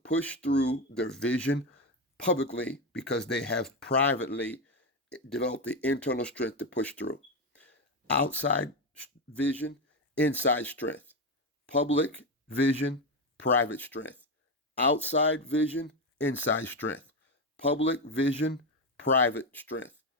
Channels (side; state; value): both; normal; correlation 0.12